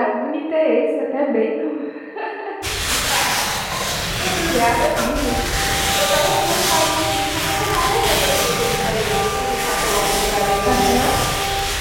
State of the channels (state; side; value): identical; both; correlation 1.00